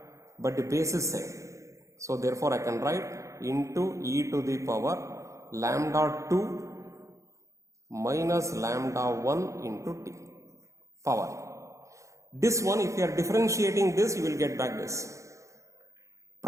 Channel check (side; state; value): left; late; 0.15 ms